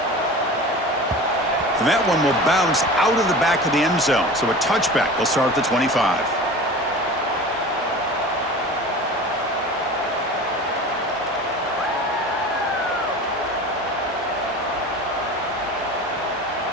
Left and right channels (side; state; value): both; normal; correlation 0.36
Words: And that one will bounce out of the back of the end zone. So a touchback will start at the 25.